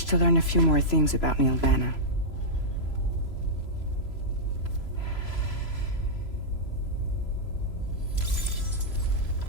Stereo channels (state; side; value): late; right; 3.0 ms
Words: to learn a few more things about Neil Vanna.